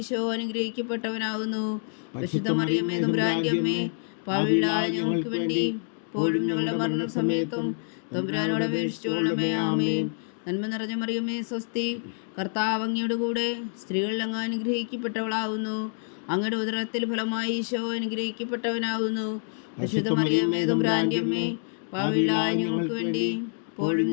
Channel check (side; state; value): right; silent; 59 dB below the other